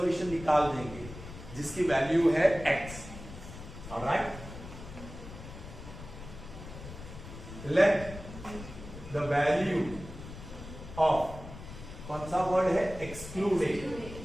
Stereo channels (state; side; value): noise; left; rumble, 13 dB below the sound